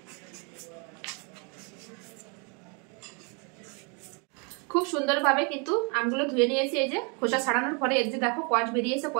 খুব সুন্দরভাবে কিন্তু আমগুলো ধুয়ে নিয়েছি। এই যে খোসা ছাড়ানোর পরে এই যে দেখো কষ বেরিয়েছে,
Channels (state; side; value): quieter; left; 34.6 dB